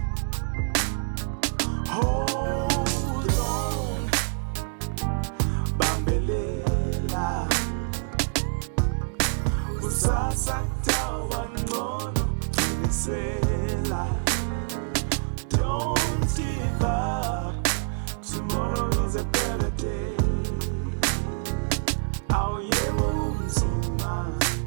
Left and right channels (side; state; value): left; silent; digital silence